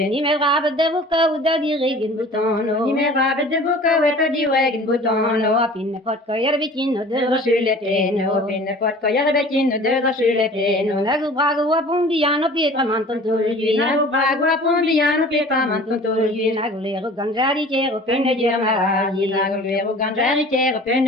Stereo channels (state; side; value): normal; both; correlation 0.45